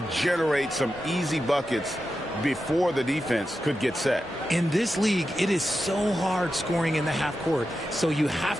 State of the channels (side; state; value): both; normal; correlation 0.90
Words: generate some easy buckets before the defense could get set. In this league, it is so hard scoring in the half court, so you